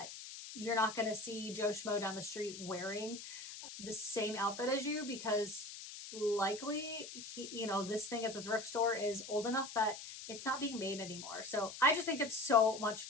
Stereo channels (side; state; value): left; noise; hiss, 11 dB below the sound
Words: you're not going to see Joe Schmo down the street wearing the same outfit as you, because likely he, you know, this thing at the thrift store is old enough that it's not being made anymore. So I just think it's so much